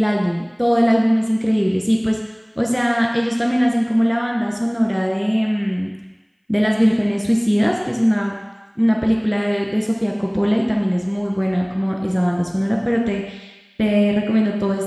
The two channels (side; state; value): both; identical; correlation 1.00